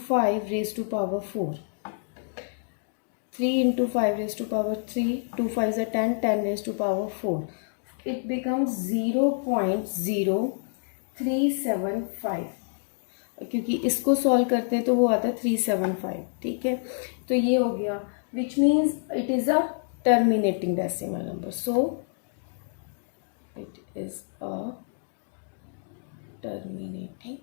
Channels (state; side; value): silent; right; digital silence